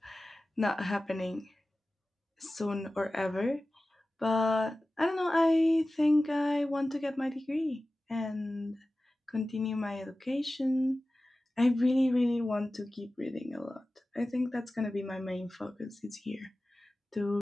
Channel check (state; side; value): normal; both; correlation 0.96